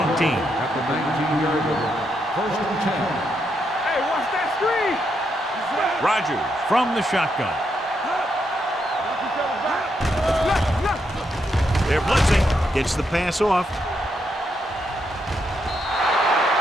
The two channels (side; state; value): both; normal; correlation 0.80